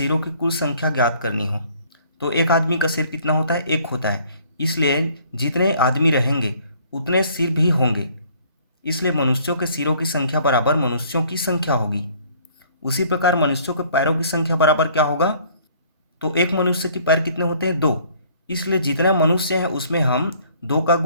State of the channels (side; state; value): both; inverted; correlation -0.58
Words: की कुल संख्या ज्ञात करनी हो तो एक आदमी का सिर कितना होता है, एक होता है। इसलिए जितने आदमी रहेंगे उतने सिर भी होंगे। इसलिए मनुष्यों के सिरों की संख्या बराबर मनुष्यों की संख्या होगी। उसी प्रकार मनुष्यों के पैरों की संख्या बराबर क्या होगा, तो एक मनुष्य के पैर कितने होते हैं, दो। इसलिए जितना मनुष्य है उसमें हम दो का